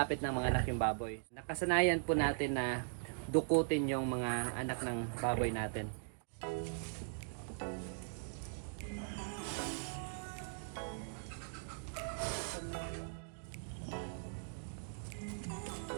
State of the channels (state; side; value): silent; left; digital silence